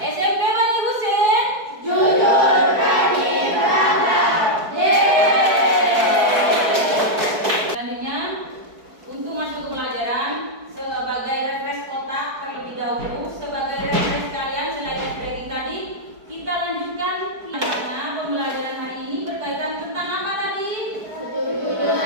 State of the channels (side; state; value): left; late; 4.6 ms